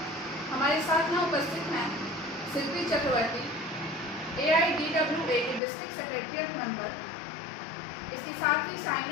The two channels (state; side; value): drops out; right; at 5.6 s